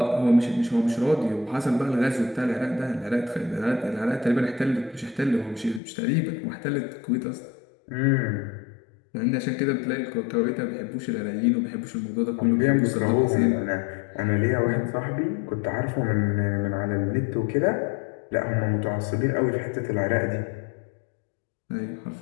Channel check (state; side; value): drops out; right; at 5.8 s